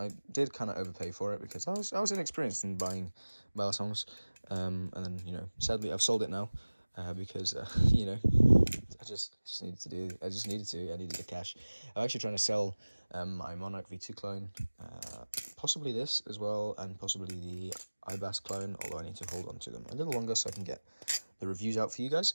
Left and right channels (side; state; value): both; inverted; correlation -1.00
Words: did kind of overpay for it because I was inexperienced in buying balisongs, and then, you know, sadly I've sold it now, because you know, I needed the cash. I'm actually trying to sell my Monarch V2 clone, possibly this as well, and possibly the IBAS clone, although I need to hold on to them a little longer so I can get the reviews out for you guys.